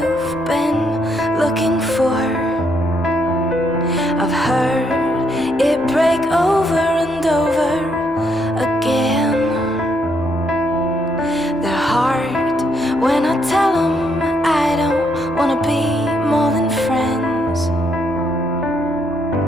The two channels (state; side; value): noise; right; hum, 24 dB below the sound